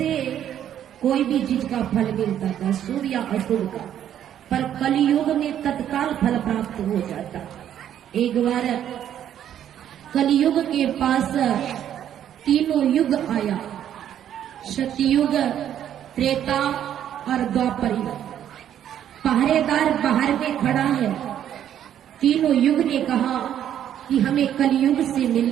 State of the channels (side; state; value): left; quieter; 10.4 dB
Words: कोई भी चीज का फल मिलता था, शुभ या अशुभ का, पर कलयुग में तत्काल फल प्राप्त हो जाता। एक बार कलयुग के पास तीनों युग आया, सतयुग, त्रेता और द्वापर युग। पहरेदार बाहर में खड़ा है। तीनों युग ने कहा कि हमें कलयुग से